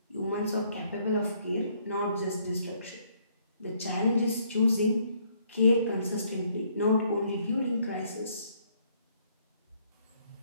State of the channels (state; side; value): inverted; both; correlation -0.67